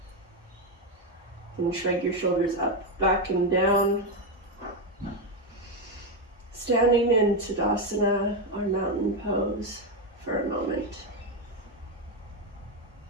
And shrug your shoulders up, back and down. Standing in Tadasana, or mountain pose, for a moment.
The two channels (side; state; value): both; normal; correlation 0.08